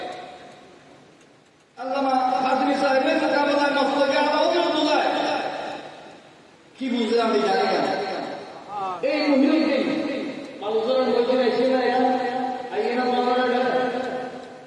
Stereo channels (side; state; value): both; identical; correlation 1.00